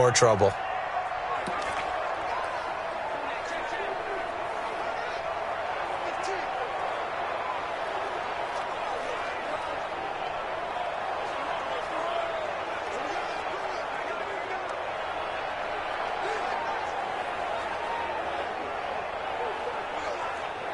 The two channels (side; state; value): both; identical; correlation 1.00